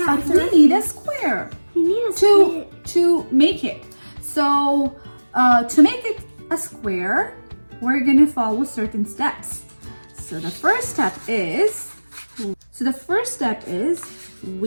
But it's a we need a square You need a square. to make it. So to make it a square, we're gonna follow certain steps. So the first step is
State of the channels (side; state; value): both; inverted; correlation -1.00